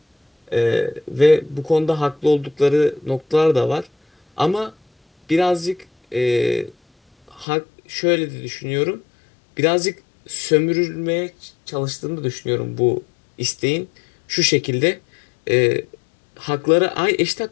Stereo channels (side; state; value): right; drops out; at 7.5 s